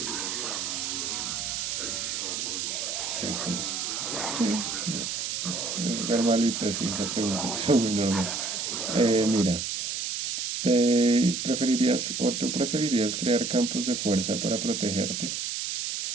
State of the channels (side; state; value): right; noise; hiss, 3 dB below the sound